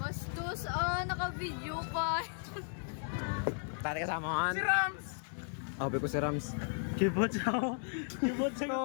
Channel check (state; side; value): silent; right; 54 dB below the other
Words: Bastos, naka-video pa. Tari kasama Si Rams! Sabi ko si Rams. Kibot siya.